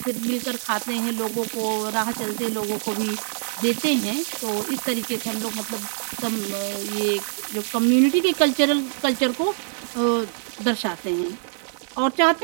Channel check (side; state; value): left; silent; 58 dB below the other